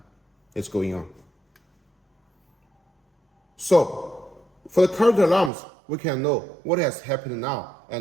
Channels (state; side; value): drops out; left; at 5.5 s